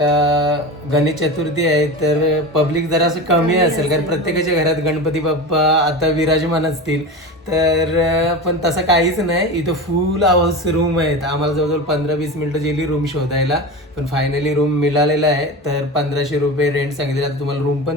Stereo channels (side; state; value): both; normal; correlation 0.27